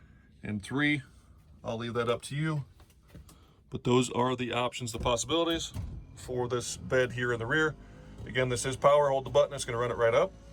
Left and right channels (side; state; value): both; identical; correlation 1.00